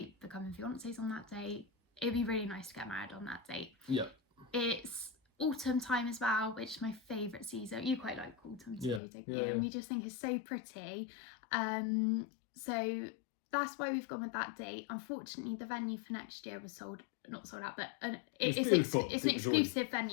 becoming fiancés on that date, it'd be really nice to get married on that date. Yeah. It's autumn time as well, which is my favourite season. You quite like autumn too, don't you? And we just think it's so pretty. So that's why we've gone with that date. Unfortunately, the venue for next year was not sold out, but it's an exclusive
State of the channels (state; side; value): drops out; right; at 9.0 s